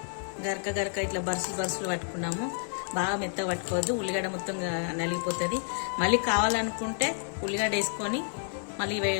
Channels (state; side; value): silent; right; 58 dB below the other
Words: గరక ఇట్లా బరుసులు పట్టుకున్నాము. బాగా మెత్తగా పట్టుకోవద్దు, ఉల్లిగడ్డ మొత్తం నలిగిపోతుంది. మళ్ళీ కావాలనుకుంటే ఉల్లిగడ్డ వేసుకొని మళ్ళీ